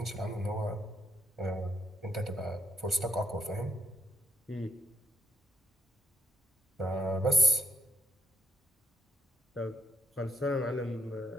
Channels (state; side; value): normal; both; correlation 0.69